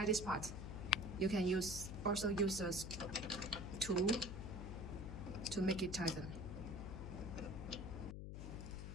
this part. You can also use a tool to make it tighten.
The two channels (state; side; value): noise; left; hum, 7 dB below the sound